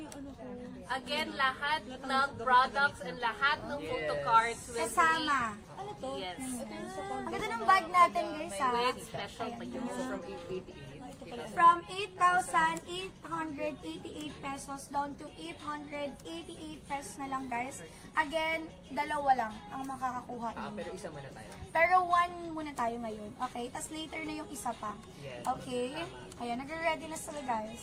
ano ko. Again, lahat ng products and lahat ng photo cards will Kasama. Ano to? be, yes, Ang ganda ng bag natin guys ha. with special pa yun. So from 888. From 8,888 pesos down to 888 pesos na lang guys. Again, dalawa lang ang makakakuha. Pero isa muna tayo. Pero one muna tayo ngayon. Okay? Tapos later na yung isa pa. Yes. Okay? Ayan, nagre-ready na sila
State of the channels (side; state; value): both; identical; correlation 1.00